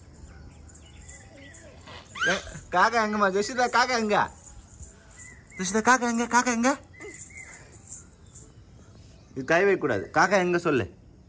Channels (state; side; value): identical; both; correlation 1.00